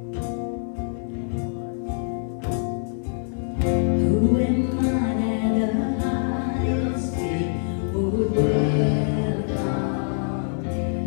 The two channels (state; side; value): silent; right; 61 dB below the other